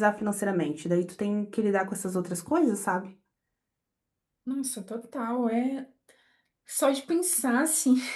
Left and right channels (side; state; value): both; identical; correlation 1.00